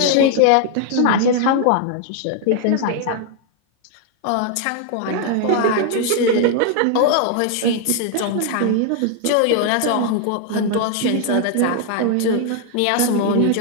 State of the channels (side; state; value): both; different; correlation 0.00